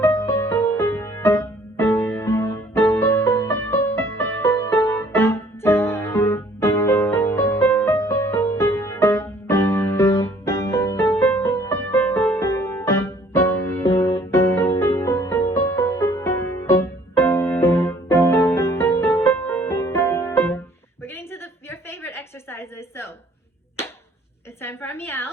We're getting to your favorite exercises, so it's time for our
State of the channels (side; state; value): both; normal; correlation 0.58